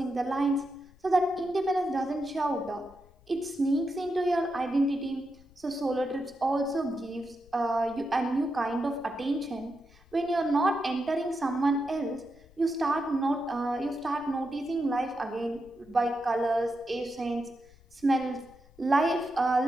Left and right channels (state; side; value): noise; left; rumble, 26 dB below the sound